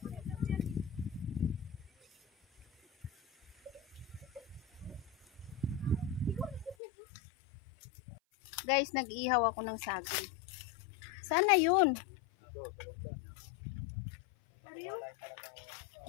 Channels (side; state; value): right; drops out; at 6.8 s